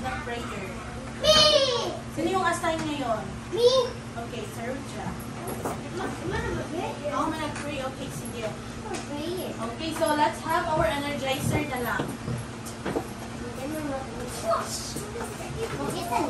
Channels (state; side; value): identical; both; correlation 1.00